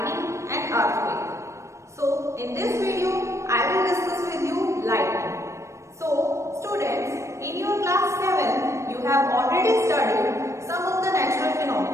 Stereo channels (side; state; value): left; late; 0.14 ms